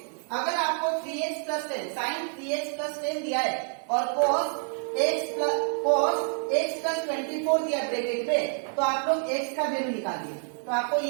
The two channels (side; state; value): left; silent; 59 dB below the other